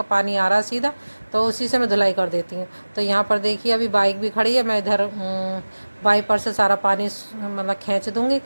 पानी आ रहा है सीधा, तो उसी से मैं धुलाई कर देती हूँ। तो यहाँ पर देखिए, अभी बाइक भी खड़ी है, मैं इधर वाइपर से सारा पानी मतलब खींच दूँगी।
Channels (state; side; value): inverted; both; correlation -1.00